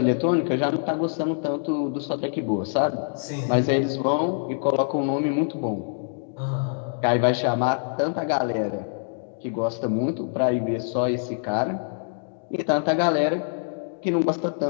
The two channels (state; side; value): silent; right; digital silence